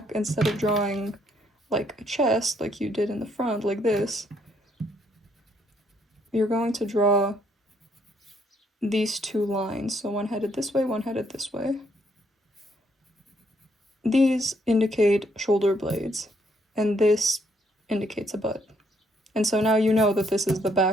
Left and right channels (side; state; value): both; normal; correlation 0.70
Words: instead of drawing like a chest like you did in the front like this, you're going to draw these two lines. So one headed this way, one headed this way. These indicate shoulder blades, and this indicates a butt. And so now you know that this is the